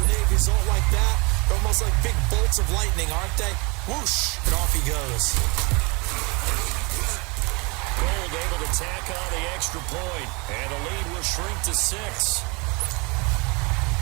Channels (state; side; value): quieter; left; 28.5 dB